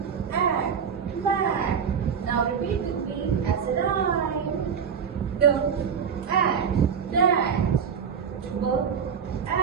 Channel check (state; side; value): quieter; left; 7.0 dB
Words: add, mat. Now repeat with me as a rhyme. D, add, dash.